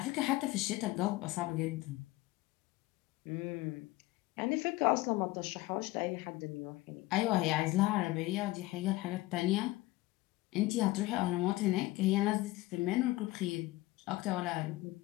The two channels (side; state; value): right; quieter; 19.0 dB